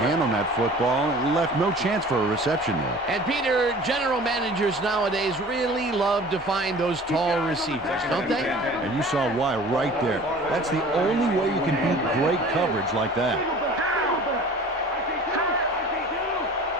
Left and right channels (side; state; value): both; normal; correlation 0.44